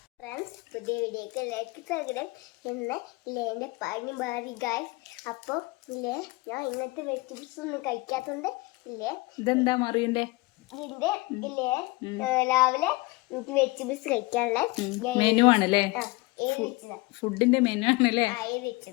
ഫ്രണ്ട്സ്, പുതിയ വീഡിയോക്ക് ലൈക്ക് തരണം എന്ന് എൻ്റെ പണി മാറി ഗൈസ്. അപ്പോൾ ഇല്ലേ ഞാൻ ഇന്നത്തെ വെജിറ്റബിൾസ് ഒന്നും കഴിക്കാത്തതുകൊണ്ട് ഇല്ലേ ഇതെന്താ മറിയണ്ടേ ഇതിന്റെ ഇല്ലേ രാവിലെ എനിക്ക് വെജിറ്റബിൾസ് കഴിക്കാനുള്ള മെനു ആണല്ലേ, ഫുഡിന്റെ മെനു ആണല്ലേ.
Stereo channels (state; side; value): quieter; right; 23.4 dB